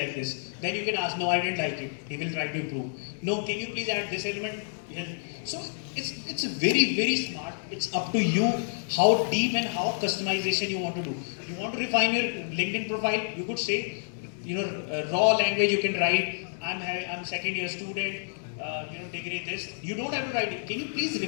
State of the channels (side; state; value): right; silent; digital silence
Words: this. Then you can ask, no, I didn't like it. He will try to improve. No, can you please add this element? So it's very, very smart. It's up to you how deep and how customization you want to do. You want to refine your LinkedIn profile, you could say, raw language you can write. I'm second year student, degree this. You don't have to write it. Can you please